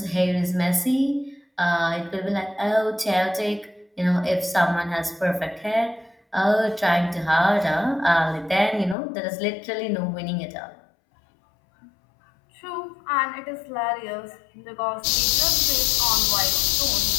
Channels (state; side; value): drops out; right; at 9.0 s